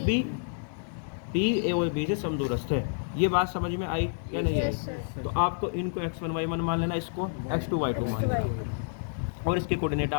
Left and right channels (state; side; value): silent; right; digital silence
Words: P A और B से समदूरस्थ है। ये बात समझ में आई या नहीं आई? तो आपको इनको x1 y1 मान लेना, इसको x2 y2 मान लेना, और इसके कोऑर्डिनेट